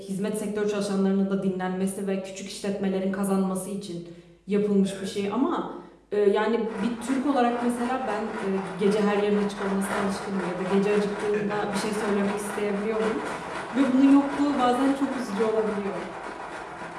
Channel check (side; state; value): both; identical; correlation 1.00